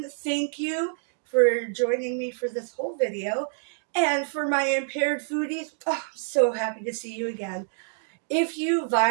Thank you for joining me for this whole video. And for my impaired foodies, oh, I'm so happy to see you again. If you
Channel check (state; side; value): silent; left; digital silence